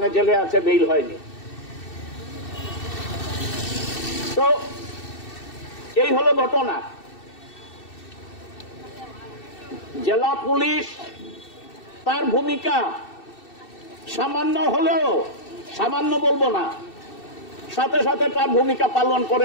জেলে আছে, বেইল হয়নি। তো এই হলো ঘটনা। জেলা পুলিশ তার ভূমিকা সামান্য হলেও, সামান্য বলবো না, সাথে সাথে তার ভূমিকা পালন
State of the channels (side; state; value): right; late; 2.6 ms